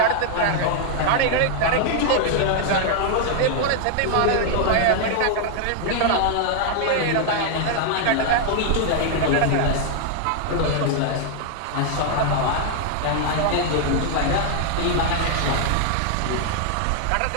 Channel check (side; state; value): both; different; correlation 0.00